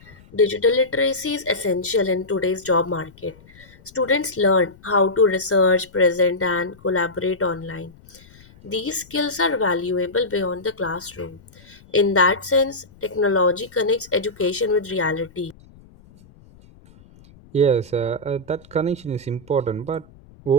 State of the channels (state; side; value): noise; left; rumble, 25 dB below the sound